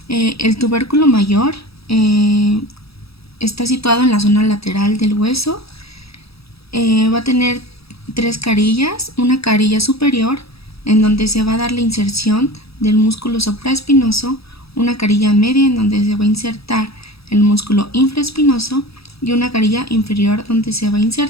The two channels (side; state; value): right; late; 0.77 ms